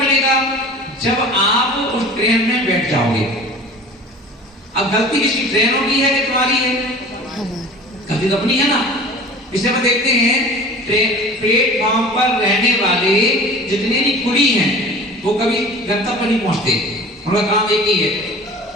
जब आप उस ट्रेन में बैठ जाओगे। अब गलती किसकी, ट्रेनों की है कि तुम्हारी है? गलती तो अपनी है ना। इसलिए हम देखते हैं प्लेटफॉर्म पर रहने वाले जितने भी कुली हैं वो कभी गंतव्य नहीं पहुंचते, उनका काम एक ही है,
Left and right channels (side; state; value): both; normal; correlation 0.41